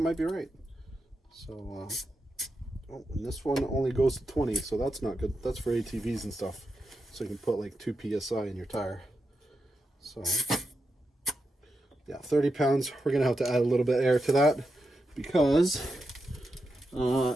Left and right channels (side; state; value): both; normal; correlation 0.87